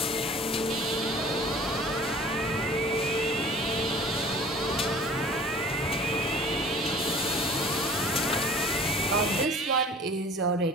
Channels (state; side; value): normal; both; correlation 0.47